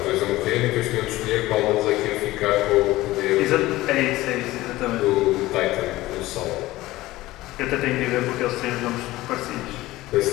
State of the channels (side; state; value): right; quieter; 17.6 dB